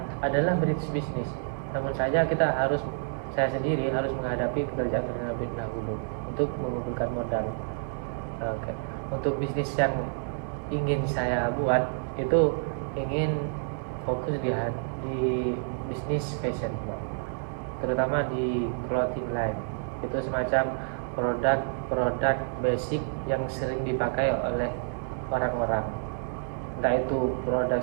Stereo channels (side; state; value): left; silent; 59 dB below the other